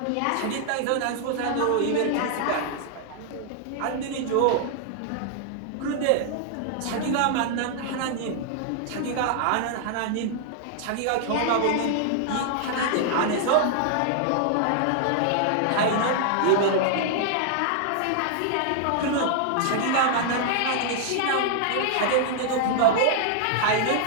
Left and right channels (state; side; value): different; both; correlation -0.01